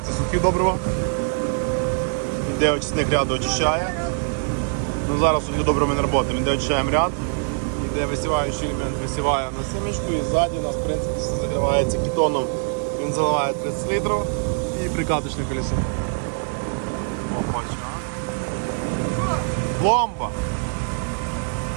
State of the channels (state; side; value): silent; left; 63 dB below the other